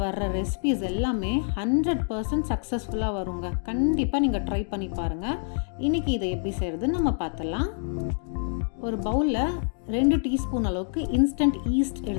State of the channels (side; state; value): right; silent; 60 dB below the other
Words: வர்ற ரெசிபிஸ் எல்லாமே 100% சக்ஸஸ்ஃபுல்லாக வருங்க. கண்டிப்பாக நீங்கள் ட்ரை பண்ணி பாருங்கள். இன்றைக்கி இதை எப்படி செய்கிறதுன்னு நம்ம பார்த்துடலாம். ஒரு பவுலில் 2 டீஸ்பூன் அளவுக்கு இன்ஸ்டன்ட் ஈஸ்ட்